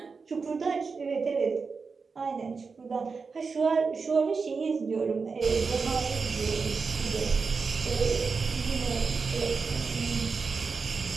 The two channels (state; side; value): quieter; left; 4.9 dB